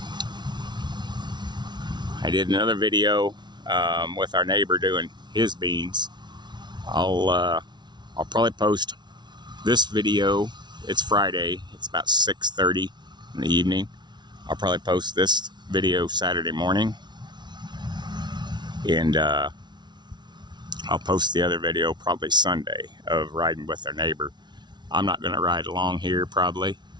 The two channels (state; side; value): late; left; 0.21 ms